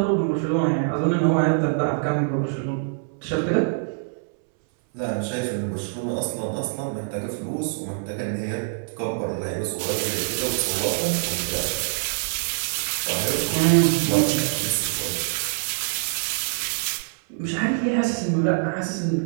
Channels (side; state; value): left; silent; 62 dB below the other